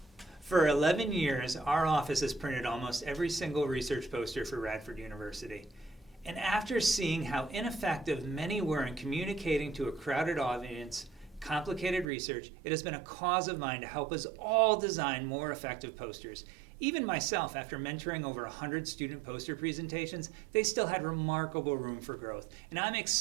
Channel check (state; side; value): drops out; left; at 12.1 s